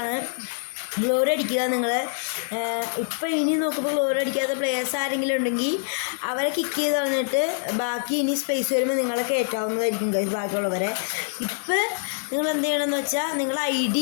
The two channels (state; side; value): silent; right; 62 dB below the other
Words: ഗ്ലോറി അടിക്കുക നിങ്ങൾ. ഇപ്പോൾ ഇനി നോക്കുമ്പോൾ ഗ്ലോറി അടിക്കാത്ത പ്ലേയേഴ്സ് ആരെങ്കിലും ഉണ്ടെങ്കിൽ അവരെ കിക്ക് ചെയ്ത് കളഞ്ഞിട്ട് ബാക്കി ഇനി സ്പേസ് വരുമ്പോൾ നിങ്ങളെ കയറ്റാവുന്നതായിരിക്കും ഗൈസ് ബാക്കിയുള്ളവരെ. ഇപ്പോൾ നിങ്ങൾ എന്ത് ചെയ്യണമെന്ന് വെച്ചാൽ നിങ്ങൾ ID